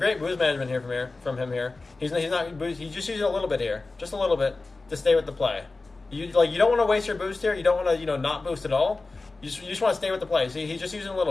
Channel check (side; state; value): right; quieter; 3.5 dB